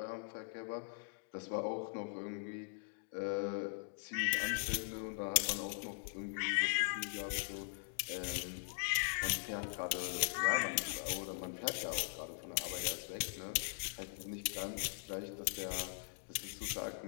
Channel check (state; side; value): silent; right; digital silence